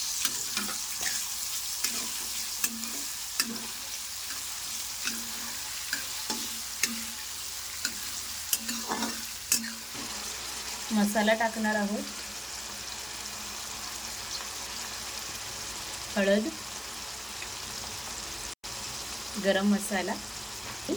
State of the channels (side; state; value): both; identical; correlation 1.00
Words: मसाला टाकणार आहोत, हळद, गरम मसाला